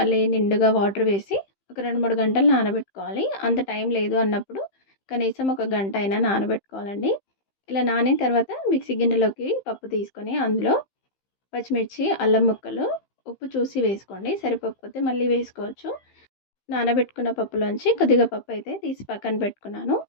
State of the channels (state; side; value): late; right; 15 ms